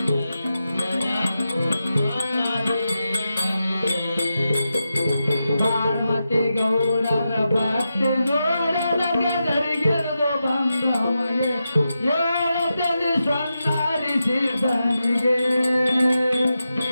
ಪಾರ್ವತಿ ಗೌಡರ ಭಕ್ತಿ ನೋಡದ ಗದರಿಗಿರಿದು ಬಂದವಗೆ ಏಳದಲ್ಲಿ ಸ್ವರ್ಣಹರಿಸಿದ್ದನಿಗೆ.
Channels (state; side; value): inverted; both; correlation -0.89